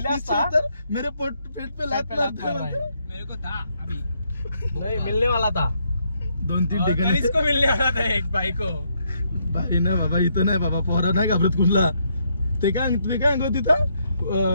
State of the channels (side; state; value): both; inverted; correlation -0.75